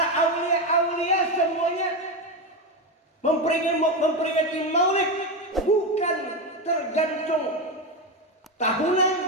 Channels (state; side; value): normal; both; correlation 0.13